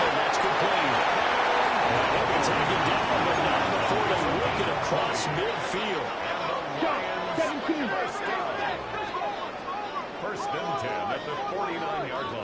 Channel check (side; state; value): both; identical; correlation 1.00